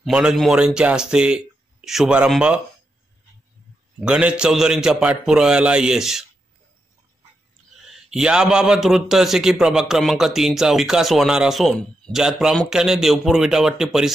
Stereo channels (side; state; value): both; normal; correlation 0.85